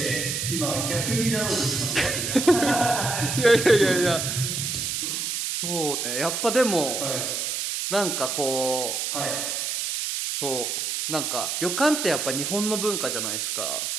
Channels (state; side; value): noise; right; hiss, 2 dB below the sound